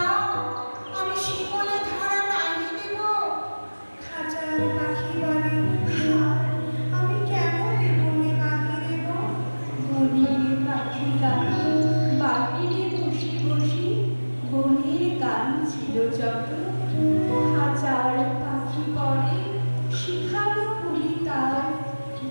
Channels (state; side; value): inverted; both; correlation -1.00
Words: আমি শিকলে ধরা নাহি দেব। খাঁচার পাখি বলে হায়, আমি কেমন বনে বাঁধি দেব। বনের পাখি গানে বাহিরে বসে বসে বনের গান ছিল যত। হাজার পাখি পরে শিখানো করি তার